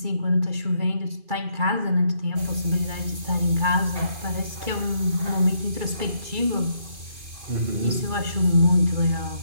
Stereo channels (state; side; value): late; left; 2.4 ms